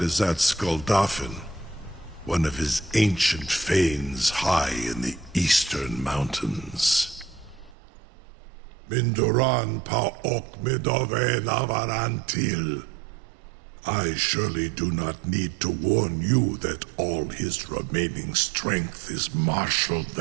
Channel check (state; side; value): drops out; left; at 7.8 s